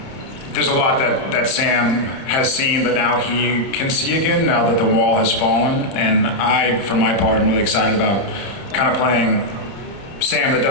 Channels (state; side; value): late; right; 30 ms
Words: there's a lot that Sam has seen that now he can see again, now that the wall has fallen. And I, for my part, am really excited about kind of playing Sam that